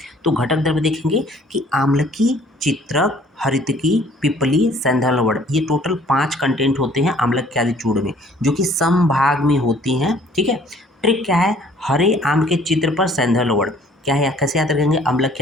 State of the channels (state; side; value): normal; both; correlation 0.56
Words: तो घटक द्रव्य देखेंगे कि आम्लकी, चित्रक, हरितकी, पिपली, सैंधवलवड़, ये टोटल 5 कंटेंट होते हैं आम्लक्यादि चूर्ण में, जो कि समभाग में होती हैं। ठीक है, ट्रिक क्या है? हरे आम के चित्र पर सैंधवलवड़, क्या है, कैसे याद रखेंगे?